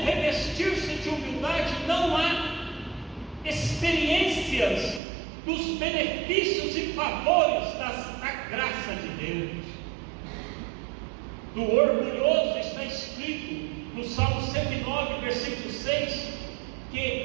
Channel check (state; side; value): drops out; left; at 5.0 s